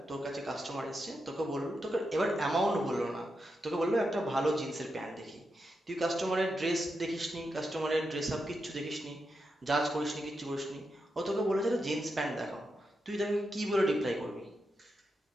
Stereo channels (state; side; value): normal; both; correlation 0.86